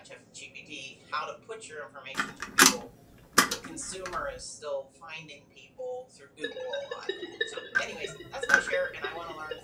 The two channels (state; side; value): identical; both; correlation 1.00